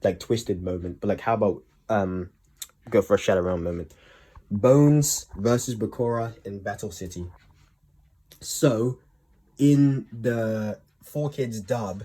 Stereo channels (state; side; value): identical; both; correlation 1.00